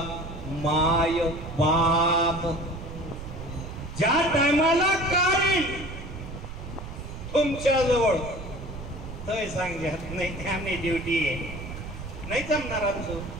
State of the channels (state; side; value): noise; right; rumble, 11 dB below the sound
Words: माय बाप. ज्या टायमाला काय तुमच्या जवळ तय सांगत नाही, आम्ही ड्युटी आहे, नाही जमणार आमचं.